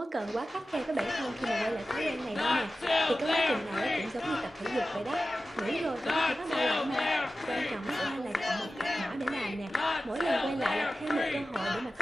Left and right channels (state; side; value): normal; both; correlation 0.94